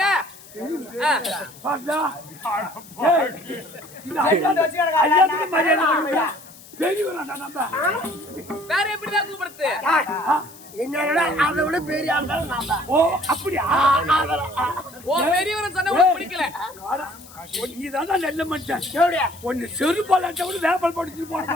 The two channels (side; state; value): left; noise; hiss, 20 dB below the sound